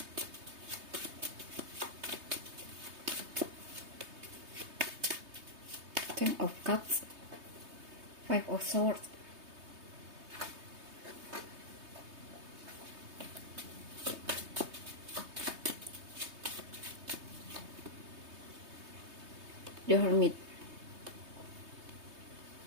Ten of Cups, Five of Swords, The Hermit.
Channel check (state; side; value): late; left; 3.2 ms